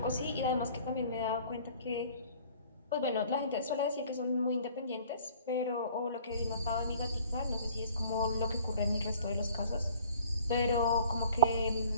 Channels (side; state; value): both; inverted; correlation -0.52